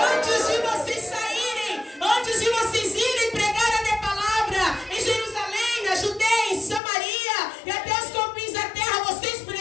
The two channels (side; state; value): right; drops out; at 6.8 s